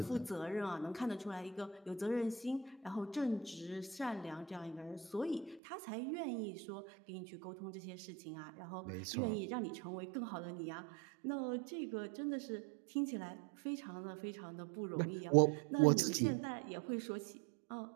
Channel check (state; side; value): drops out; left; at 5.6 s